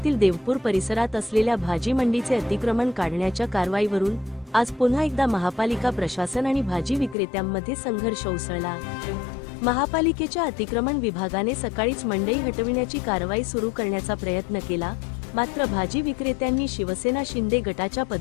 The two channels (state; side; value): drops out; right; at 7.2 s